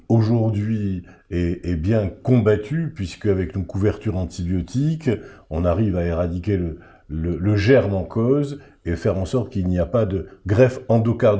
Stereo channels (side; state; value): both; identical; correlation 1.00